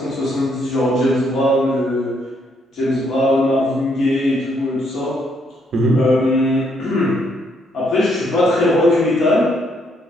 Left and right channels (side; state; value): both; normal; correlation 0.72